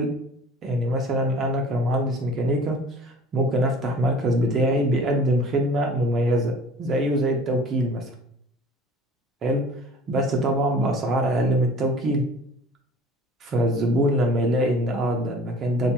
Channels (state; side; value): normal; both; correlation 0.46